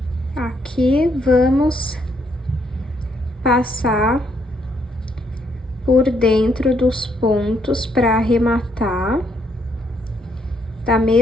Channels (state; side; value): normal; both; correlation 0.73